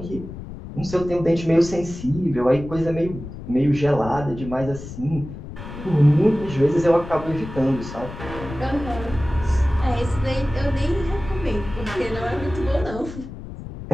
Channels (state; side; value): noise; left; rumble, 11 dB below the sound